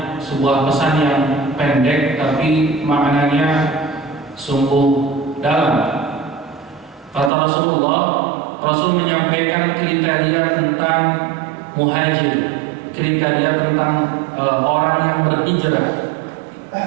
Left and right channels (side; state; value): left; drops out; at 7.3 s